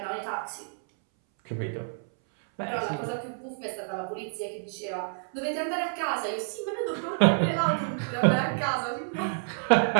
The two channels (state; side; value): silent; left; 59 dB below the other